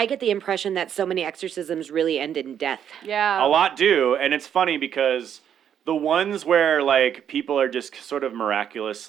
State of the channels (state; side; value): quieter; left; 9.0 dB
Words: get the impression that so many exorcisms really end in death. Yeah. A lot do, and it's funny because the ones where like people are just sort of